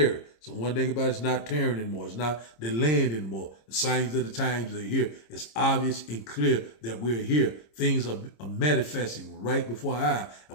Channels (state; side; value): late; right; 26 ms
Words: So one thing about it's not tearing anymore. It's not delaying anymore. The signs of the times are here. It's obvious and clear that we're here. Things are manifesting right before our eye.